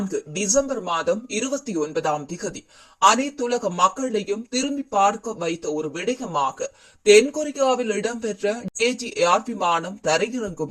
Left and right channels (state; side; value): identical; both; correlation 1.00